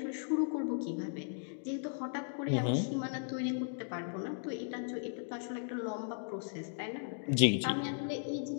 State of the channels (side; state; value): right; silent; digital silence